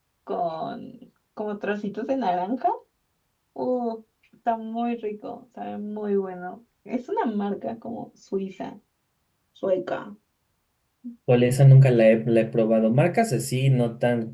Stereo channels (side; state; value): both; identical; correlation 1.00